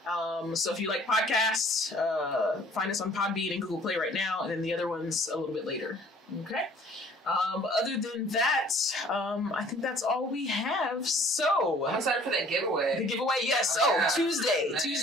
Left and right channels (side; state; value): both; normal; correlation 0.54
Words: So if you like podcasts, find us on Podbean and Google Play right now, and then the other ones a little bit later. Okay. Other than that, I think that's all we have. So I'm excited for that giveaway. The giveaway, yes.